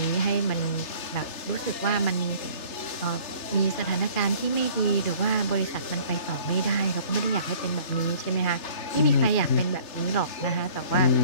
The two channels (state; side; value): late; right; 3.3 ms